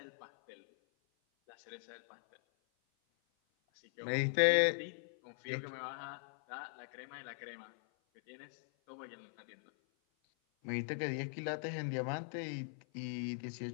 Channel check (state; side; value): silent; right; 51 dB below the other